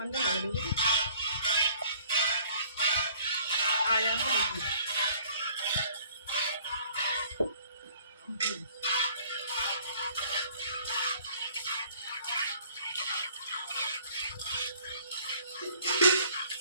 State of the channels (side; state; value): both; inverted; correlation -0.56